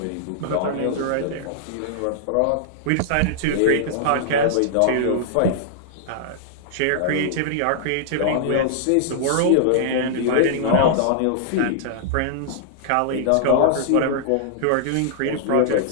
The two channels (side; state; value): both; different; correlation -0.02